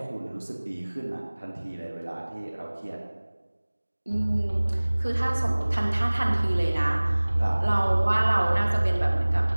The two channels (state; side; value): inverted; both; correlation -1.00